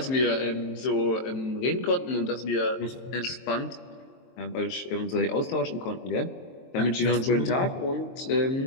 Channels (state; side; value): late; right; 23 ms